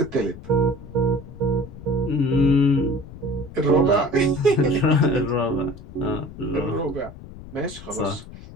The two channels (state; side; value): noise; left; rumble, 16 dB below the sound